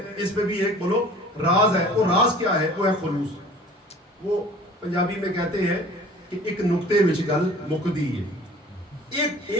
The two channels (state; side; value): normal; both; correlation 0.47